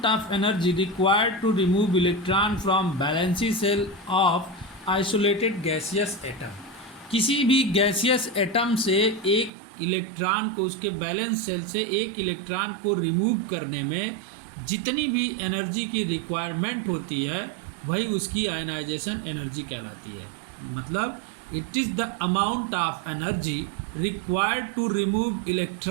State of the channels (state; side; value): drops out; left; at 9.5 s